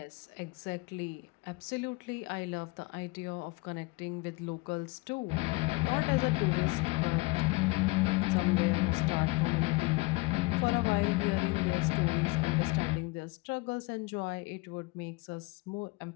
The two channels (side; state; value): right; quieter; 24.7 dB